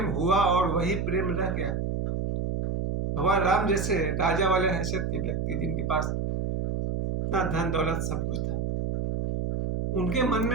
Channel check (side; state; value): right; noise; hum, 1 dB below the sound